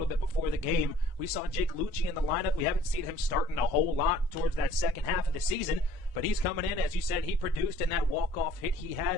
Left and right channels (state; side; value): normal; both; correlation 0.56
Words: bit before the game. We saw Jake Lucci in the lineup. We haven't seen him starting a whole lot towards that second half of the season, but he's coming in. As you said, he produced in that walk-off hit he